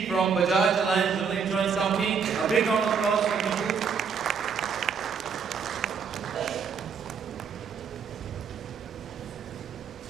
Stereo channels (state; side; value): quieter; left; 6.3 dB